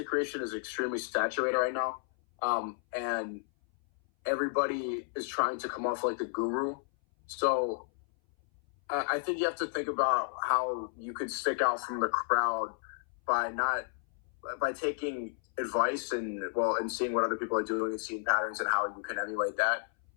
creation is extremely saturated right now, and everybody is trying to come off like the guru. So I think you have to think about how you could stick out from the crowd by taking advice and seeing what other people are doing and seeing patterns and how you can emulate that,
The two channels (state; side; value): silent; right; 56 dB below the other